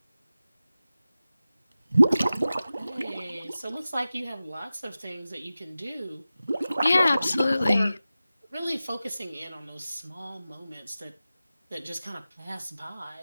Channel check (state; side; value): inverted; both; correlation -0.95